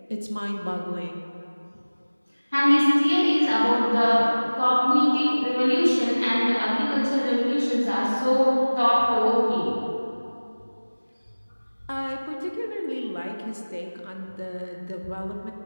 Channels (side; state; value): both; inverted; correlation -1.00